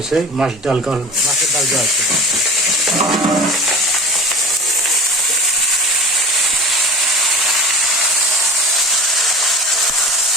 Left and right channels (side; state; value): both; normal; correlation 0.36